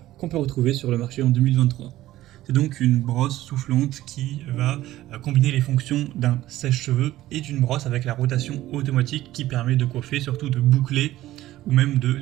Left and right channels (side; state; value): left; quieter; 15.2 dB